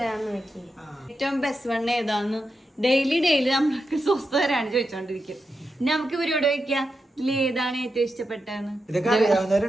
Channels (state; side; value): normal; both; correlation 0.87